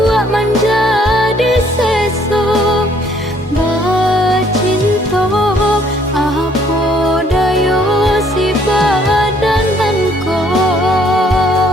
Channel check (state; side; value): normal; both; correlation 0.63